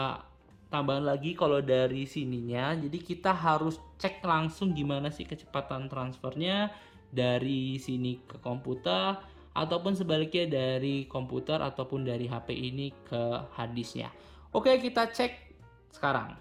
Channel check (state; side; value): identical; both; correlation 1.00